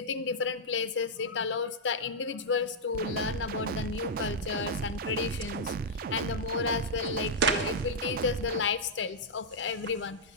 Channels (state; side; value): normal; both; correlation -0.07